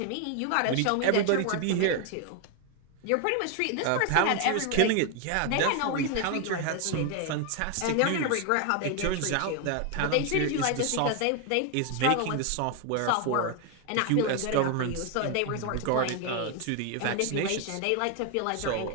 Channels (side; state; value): both; different; correlation 0.01